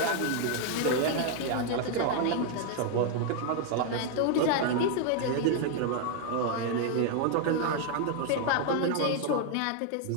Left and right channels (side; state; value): both; different; correlation 0.00